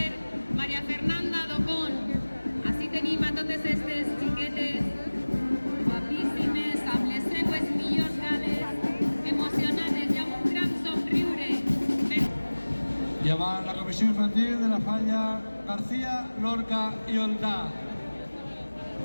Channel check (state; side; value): inverted; both; correlation -1.00